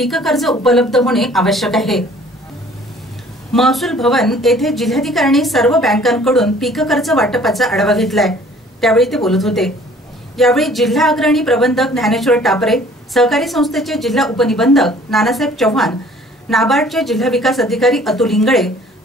कर्ज उपलब्ध होणे आवश्यक आहे। महसूल भवन येथे जिल्हाधिकाऱ्यांनी सर्व बँकांकडून पीक कर्ज वाटपाचा आढावा घेतलाय, त्यावेळी ते बोलत होते। यावेळी जिल्हा अग्रणी प्रबंधक ज्ञानेश्वर टापरे, सहकारी संस्थेचे जिल्हा उपनिबंधक नानासाहेब चव्हाण, नाबार्डचे जिल्हा विकास अधिकारी अतुल इंगळे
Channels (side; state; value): both; normal; correlation 0.54